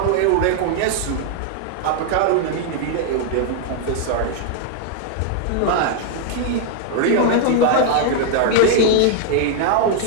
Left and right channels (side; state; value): both; different; correlation 0.00